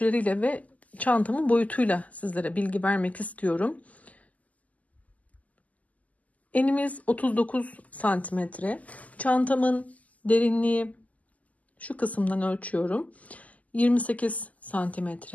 ve çantamın boyutuyla sizlere bilgi vermek istiyorum. Enimiz 39 santimetre. Çantamın derinliği şu kısımdan ölçüyorum. 28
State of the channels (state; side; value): late; right; 0.074 ms